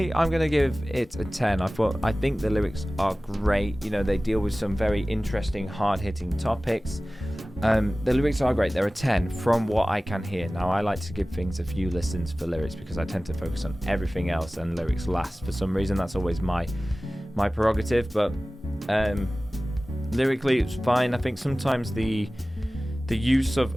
I'm going to give it a 10. I think the lyrics are great. You know, they deal with some very interesting, hard-hitting topics. The lyrics are great. They're a 10 from what I can hear. Now, I like to give things a few listens for lyrics because I tend to focus on everything else and lyrics last. For some reason, that's always my prerogative. But lyrically, it's fine. I think sometimes the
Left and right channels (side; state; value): both; normal; correlation 0.97